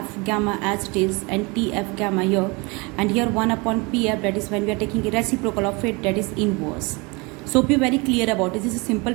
gamma as it is, and Tf gamma here, and here 1 upon Pf, that is when we are taking a reciprocal of it, that is inverse. So be very clear about it. This is a simple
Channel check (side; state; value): left; quieter; 27.5 dB